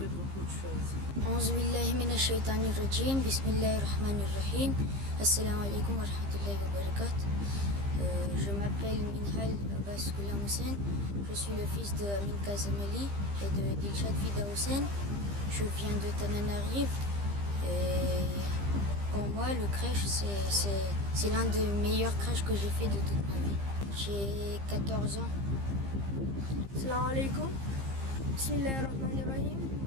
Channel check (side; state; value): left; late; 15 ms